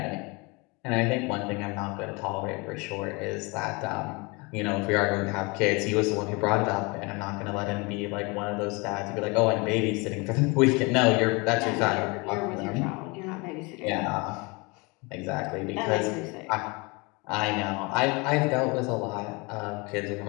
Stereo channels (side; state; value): right; quieter; 27.6 dB